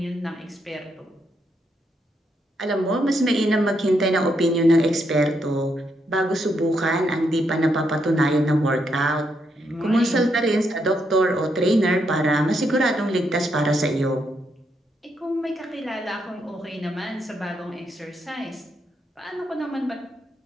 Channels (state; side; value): normal; both; correlation 0.78